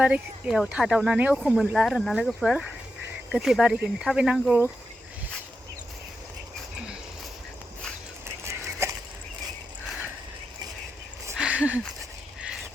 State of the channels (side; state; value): both; normal; correlation 0.88